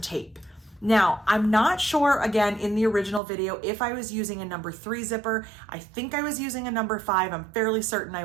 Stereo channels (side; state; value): left; drops out; at 3.2 s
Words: Now, I'm not sure, again, in the original video, if I was using a number 3 zipper. I think I was using a number 5. I'm fairly certain I